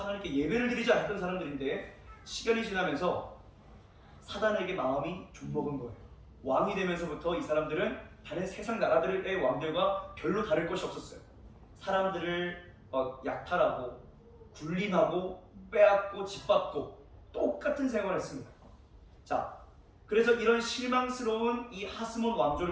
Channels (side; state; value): both; identical; correlation 1.00